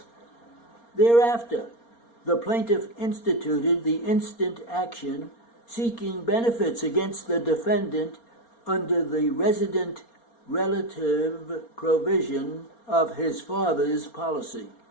Thereafter, the plaintiff instituted the instant action seeking benefits against the defendant under the resident relative provision of his father's policy.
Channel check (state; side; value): late; right; 4.3 ms